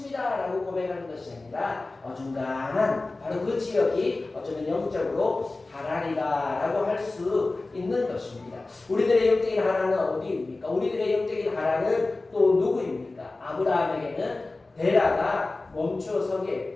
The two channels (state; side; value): quieter; right; 3.2 dB